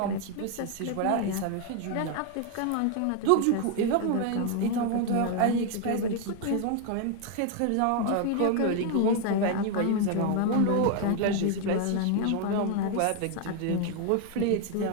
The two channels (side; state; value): both; different; correlation 0.00